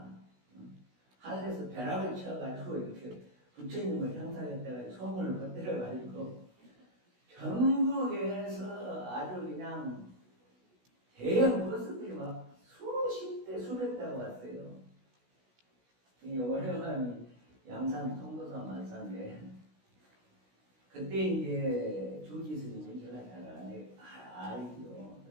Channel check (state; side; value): late; left; 16 ms